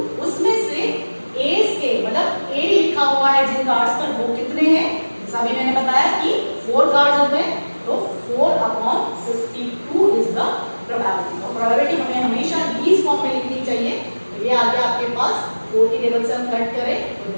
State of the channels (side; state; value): both; inverted; correlation -1.00